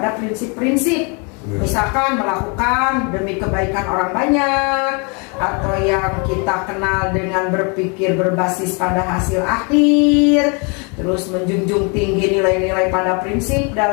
prinsip-prinsip. Misalkan melakukan demi kebaikan orang banyak, atau yang kita kenal dengan berpikir berbasis pada hasil akhir, terus menjunjung tinggi nilai-nilai pada prinsip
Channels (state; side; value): quieter; right; 34.0 dB